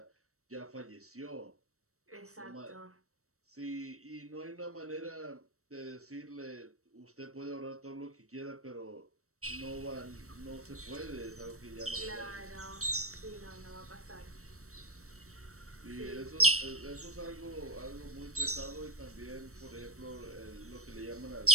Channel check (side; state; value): left; late; 0.64 ms